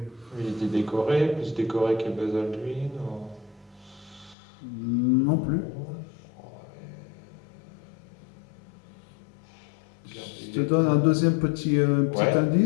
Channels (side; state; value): right; drops out; at 4.4 s